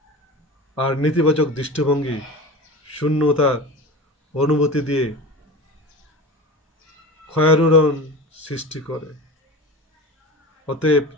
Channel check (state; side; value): normal; both; correlation 0.32